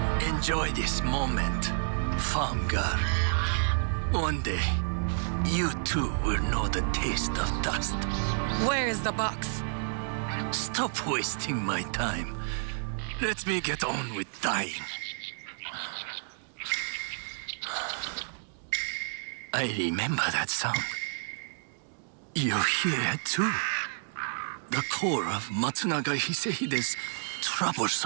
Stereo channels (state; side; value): silent; left; digital silence